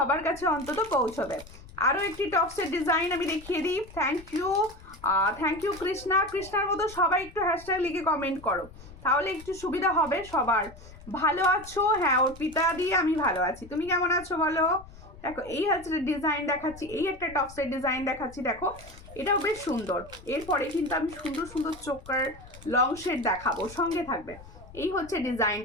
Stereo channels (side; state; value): left; noise; rumble, 19 dB below the sound